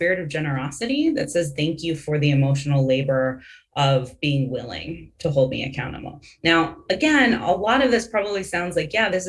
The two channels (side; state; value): both; identical; correlation 1.00